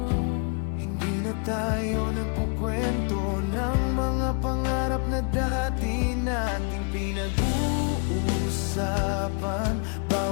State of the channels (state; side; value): quieter; right; 39.2 dB